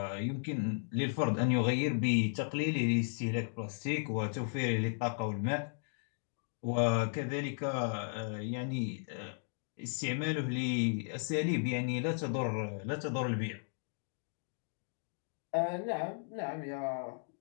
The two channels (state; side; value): silent; right; digital silence